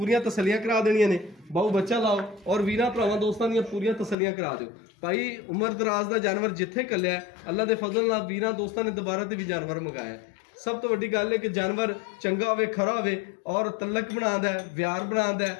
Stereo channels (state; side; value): drops out; right; at 4.2 s